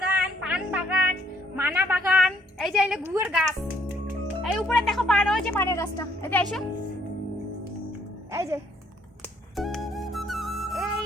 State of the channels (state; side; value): normal; both; correlation 0.67